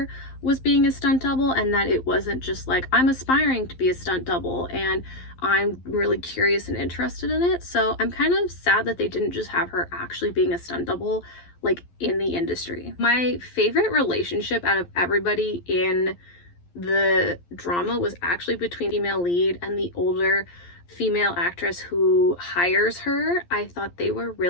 was being a stunt double and that it wasn't just like, I'm aspiring to be a stunt double and I'm really curious and interested in it. So I'm kind of sad that they didn't just have her actually being a stunt double like in the industry. My favorite relationship out of everybody in the drama was actually between the female lead and the older female actress who hires her. I thought they were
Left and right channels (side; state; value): right; late; 11 ms